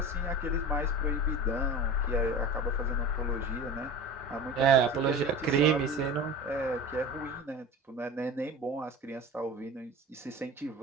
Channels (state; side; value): normal; both; correlation 0.34